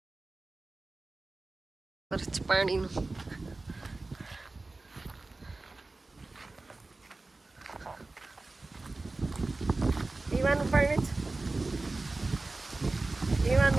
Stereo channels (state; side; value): quieter; left; 3.3 dB